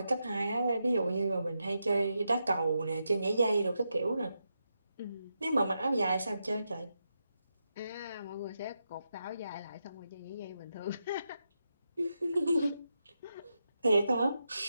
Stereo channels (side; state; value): both; inverted; correlation -0.86